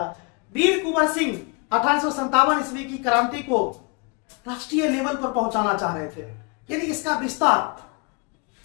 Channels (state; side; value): quieter; right; 32.3 dB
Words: वीर कुंवर सिंह 1857 ईस्वी की क्रांति को राष्ट्रीय लेवल पर पहुंचाना चाह रहे थे, यानी इसका विस्तार